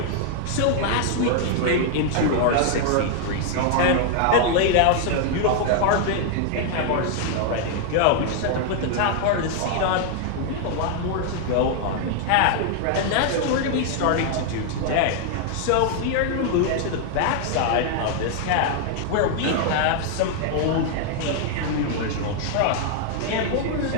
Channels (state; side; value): different; both; correlation 0.00